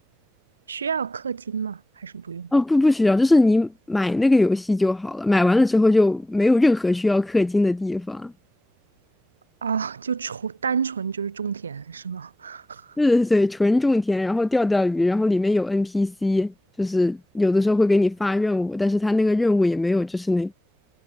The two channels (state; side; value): normal; both; correlation 0.91